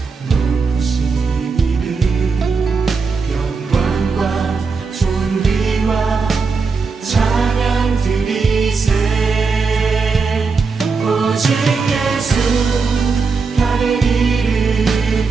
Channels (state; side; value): quieter; left; 4.7 dB